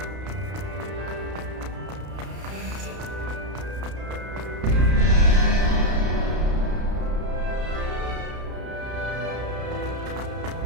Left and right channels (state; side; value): late; left; 32 ms